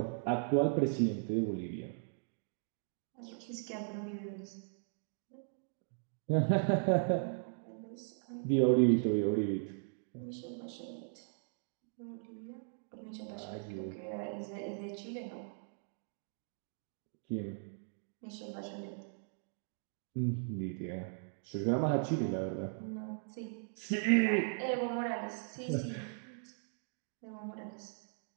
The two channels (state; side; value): silent; left; digital silence